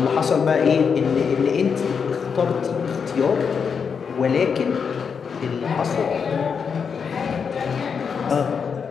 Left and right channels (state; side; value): quieter; right; 6.3 dB